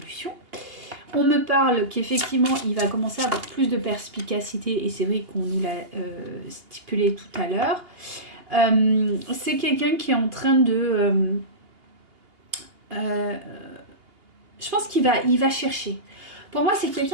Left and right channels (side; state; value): left; late; 2.8 ms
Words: On me parle qu'effectivement, il va commencer à avoir plus de perspicacité, et c'est vrai qu'on nous l'a stipulé tout à l'heure. C'est quelqu'un qui est en train de... je pense qu'il va chercher. Pour moi, c'est